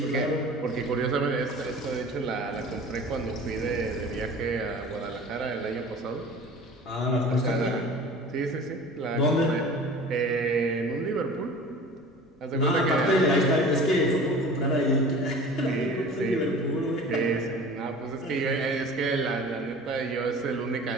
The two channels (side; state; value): both; normal; correlation 0.41